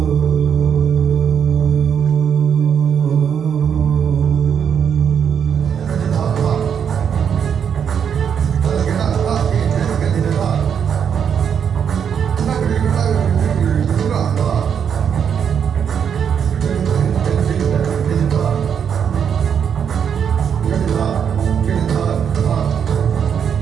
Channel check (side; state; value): left; quieter; 7.7 dB